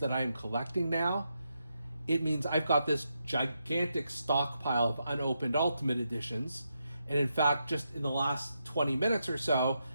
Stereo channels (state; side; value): inverted; both; correlation -0.84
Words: I'm collecting now, it means I've got this gigantic stockpile of unopened Ultimate Editions. And in fact, just in the last 20 minutes or so,